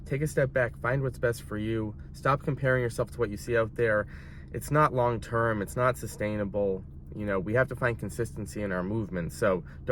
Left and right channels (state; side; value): identical; both; correlation 1.00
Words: take a step back, find what's best for you. Stop comparing yourself to what you see out there. It's not long term, it's not sustainable. You know, we have to find consistency in our movements, so